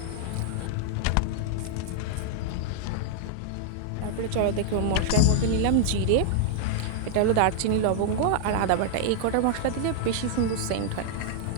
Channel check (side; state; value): both; different; correlation 0.00